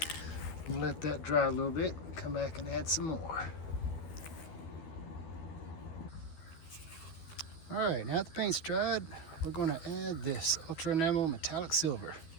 We'll let that dry a little bit and come back and add some more. Alright, now that the paint's dried, we're going to add this Ultra Enamel Metallic Silver.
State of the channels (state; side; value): late; right; 12 ms